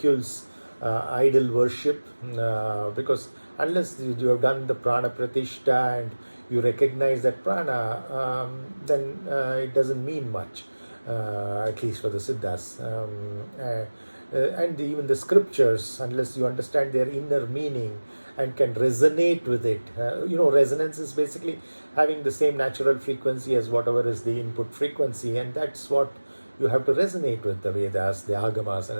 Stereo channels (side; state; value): both; inverted; correlation -1.00